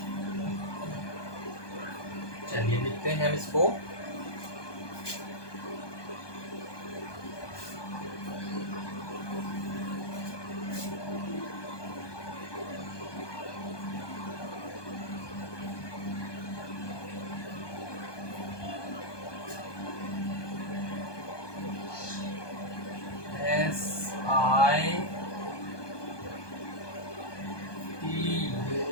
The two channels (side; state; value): right; late; 1.2 ms